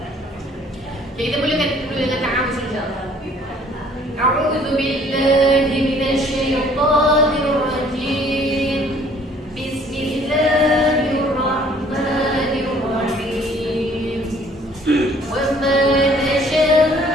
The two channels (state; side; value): normal; both; correlation 0.57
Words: Okay, kita mulakan dengan ta'awuz insya-Allah. A'udzu billahi minasyaitonir rajim. Bismillahirrahmanirrahim. Wa ma tasha'una